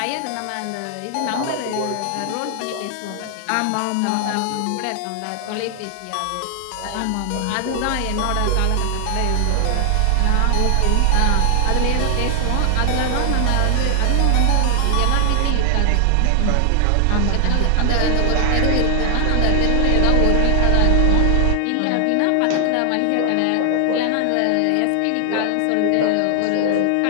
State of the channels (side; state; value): both; different; correlation 0.00